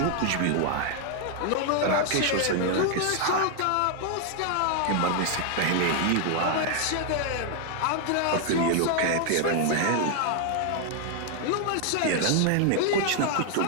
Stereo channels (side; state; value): both; different; correlation 0.00